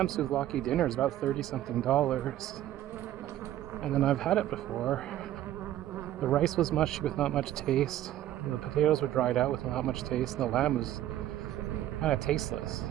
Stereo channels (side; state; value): left; quieter; 13.0 dB